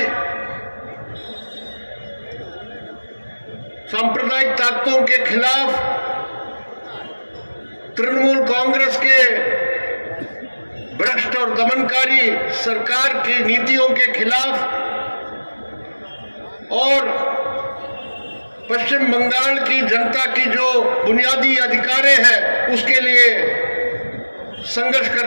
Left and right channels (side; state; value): both; inverted; correlation -1.00